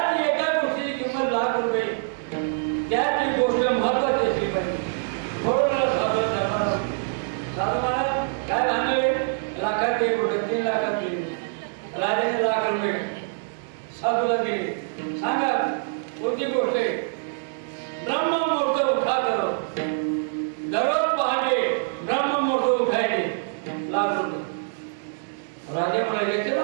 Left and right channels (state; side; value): silent; left; digital silence